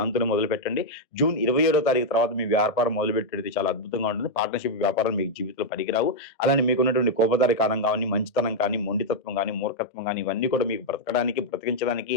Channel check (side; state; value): right; late; 1.6 ms